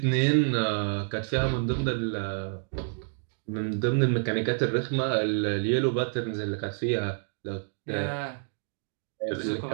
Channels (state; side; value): silent; left; digital silence